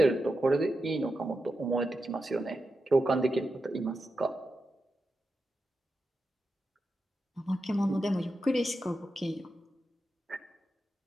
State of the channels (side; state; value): both; normal; correlation 0.89